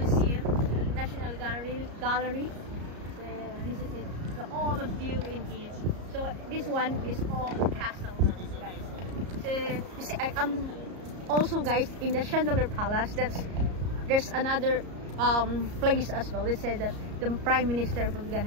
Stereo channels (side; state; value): left; late; 34 ms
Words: National Gallery. So this is it. So all the view in here. So this one is all castle, guys. So you see, I'm also guys in the Chandelier Palace. There's another place as well. They said that the prime minister was